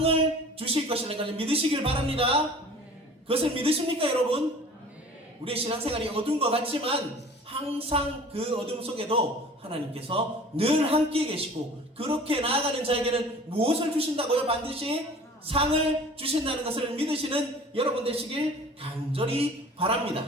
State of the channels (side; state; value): both; normal; correlation 0.45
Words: 주실 것이라는 것을 믿으시길 바랍니다. 그것을 믿으십니까, 여러분? 우리의 신앙생활이 어두운 것 같지만 항상 그 어둠 속에도 하나님께서 늘 함께 계시고, 그렇게 나아가는 자에게는 무엇을 주신다고요? 반드시 상을 주신다는 것을 믿으시는 여러분 되시길 간절히